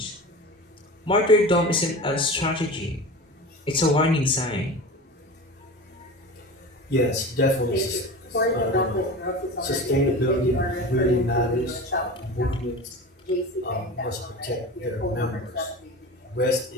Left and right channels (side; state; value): both; normal; correlation 0.32